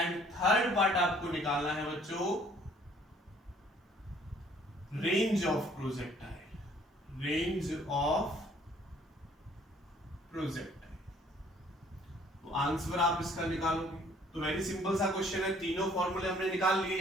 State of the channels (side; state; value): both; normal; correlation 0.59